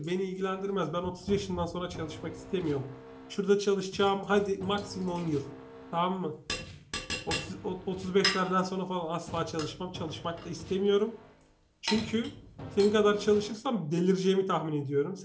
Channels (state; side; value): identical; both; correlation 1.00